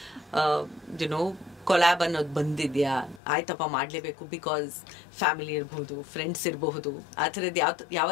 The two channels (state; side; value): drops out; right; at 3.2 s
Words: ಕೊಲಾಬ್ ಅನ್ನೋದು ಬಂದಿದ್ಯಾ? ಆಯ್ತಪ್ಪ ಮಾಡ್ಲೇಬೇಕು ಬಿಕಾಸ್ ಫ್ಯಾಮಿಲಿ ಇರಬಹುದು, ಫ್ರೆಂಡ್ಸ್ ಇರಬಹುದು, ಆ ಥರದ್ದು